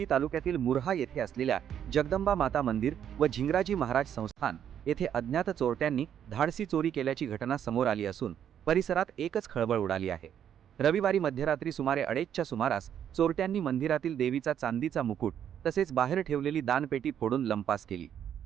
तालुक्यातील मुर्हा येथे असलेल्या जगदंबा माता मंदिर व झिंगराजी महाराज संस्थान येथे अज्ञात चोरट्यांनी धाडसी चोरी केल्याची घटना समोर आली असून परिसरात एकच खळबळ उडाली आहे। रविवारी मध्यरात्री सुमारे 2:30च्या सुमारास चोरट्यांनी मंदिरातील देवीचा चांदीचा मुकुट तसेच बाहेर ठेवलेली दानपेटी फोडून लंपास केली।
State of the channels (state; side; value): quieter; left; 9.4 dB